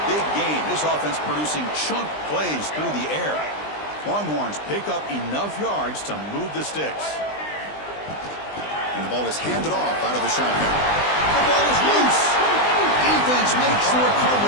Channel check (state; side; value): late; right; 20 ms